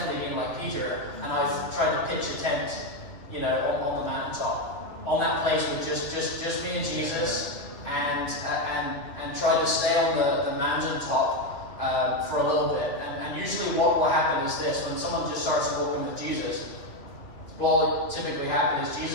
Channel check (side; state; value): right; late; 2.3 ms